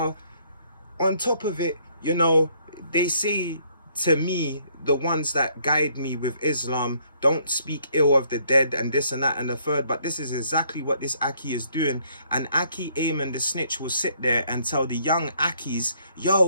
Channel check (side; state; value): both; inverted; correlation -0.66